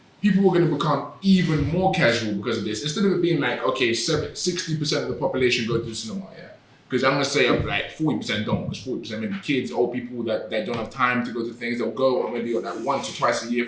people are going to become even more casual because of this. Instead of it being like, 60% of the population go to the cinema, because I'm going to say like 40% don't, because 40% maybe kids, old people that don't have time to go to things, they'll go maybe like once or twice a year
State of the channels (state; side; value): identical; both; correlation 1.00